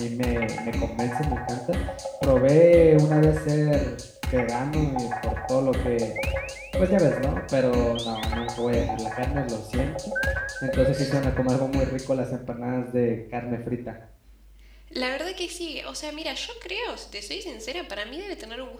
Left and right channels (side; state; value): both; identical; correlation 1.00